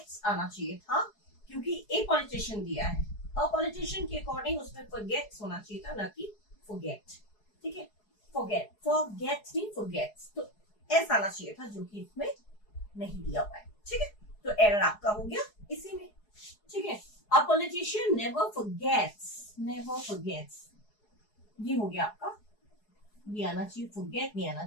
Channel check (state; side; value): late; right; 4.8 ms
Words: आना चाहिए था, क्योंकि ए पॉलिटिशियन दिया है. अ पॉलिटिशियन के अकॉर्डिंग उसमें फॉरगेट्स होना चाहिए था, ना कि फॉरगेट. ठीक है, फॉरगेट नहीं फॉरगेट्स, तो एस आना चाहिए था, जो कि इसमें नहीं दिया हुआ है. ठीक है, तो एरर आपका हो गया इसी में. ठीक है, अ पॉलिटिशियन नेवर फॉरगेट्स, ये हो गया आपका. ये आना चाहिए, फॉरगेट नहीं आना